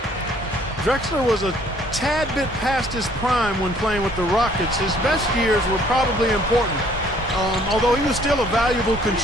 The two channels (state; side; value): normal; both; correlation 0.60